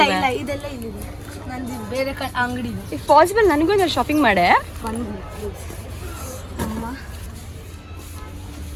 ಇದೆಲ್ಲ ಇಲ್ಲಿದೆ. ನಂದು ಬೇರೆ ಅಂಗಡಿ ಇದೆ. ಇಫ್ ಪಾಸಿಬಲ್ ನನಗೂ ಒಂದು ಶಾಪಿಂಗ್ ಮಾಡೆ. ಅಮ್ಮ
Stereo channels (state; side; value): identical; both; correlation 1.00